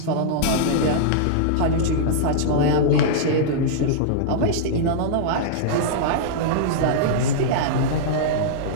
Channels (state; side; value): different; both; correlation -0.02